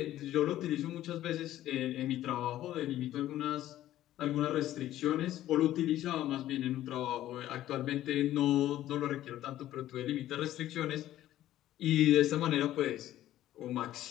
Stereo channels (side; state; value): right; quieter; 13.5 dB